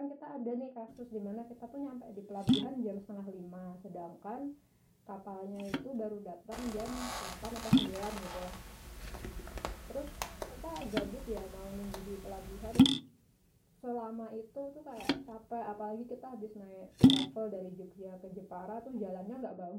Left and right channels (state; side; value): identical; both; correlation 1.00